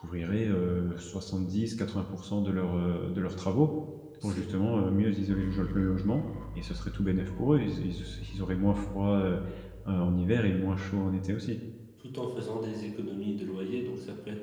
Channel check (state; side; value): identical; both; correlation 1.00